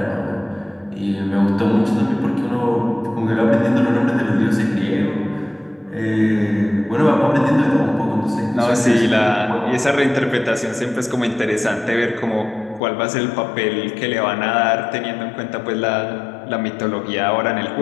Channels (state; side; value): drops out; right; at 12.8 s